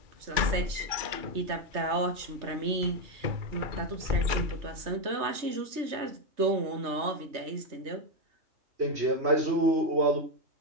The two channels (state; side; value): late; left; 3.3 ms